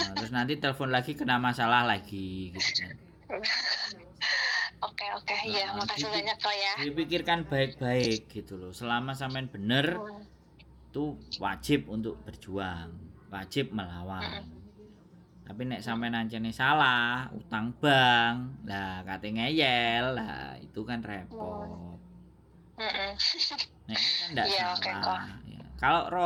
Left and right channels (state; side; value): identical; both; correlation 1.00